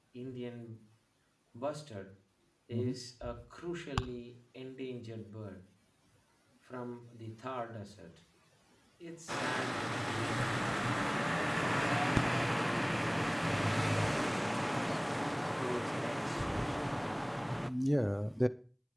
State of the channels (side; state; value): both; identical; correlation 1.00